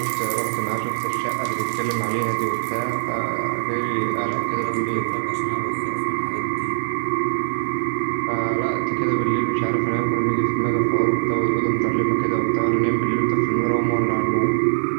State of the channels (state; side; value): silent; left; digital silence